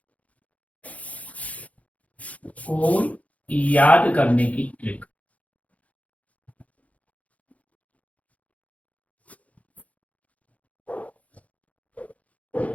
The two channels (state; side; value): late; right; 0.068 ms